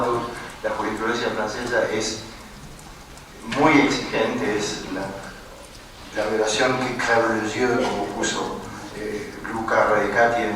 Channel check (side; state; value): both; identical; correlation 1.00